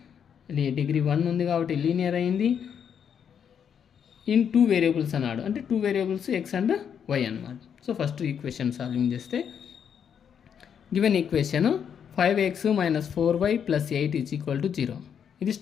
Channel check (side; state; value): right; quieter; 7.9 dB